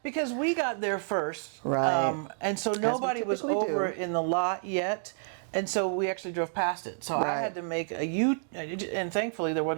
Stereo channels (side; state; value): left; silent; digital silence